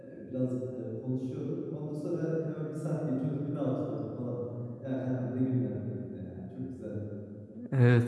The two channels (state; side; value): identical; both; correlation 1.00